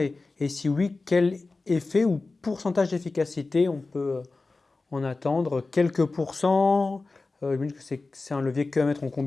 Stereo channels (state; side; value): quieter; right; 3.6 dB